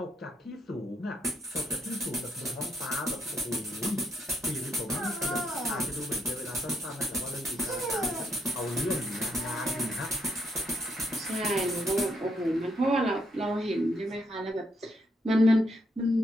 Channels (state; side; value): normal; both; correlation 0.75